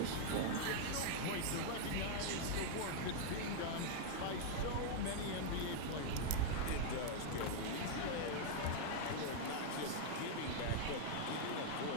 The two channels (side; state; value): both; different; correlation 0.00